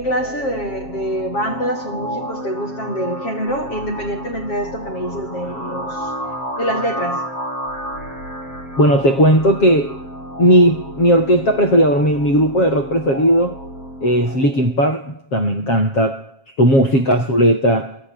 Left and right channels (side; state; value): right; late; 7.4 ms